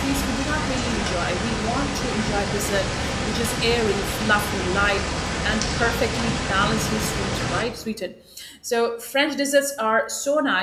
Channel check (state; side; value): identical; both; correlation 1.00